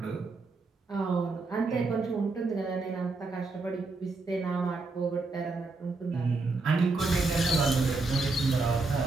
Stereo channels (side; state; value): left; quieter; 3.6 dB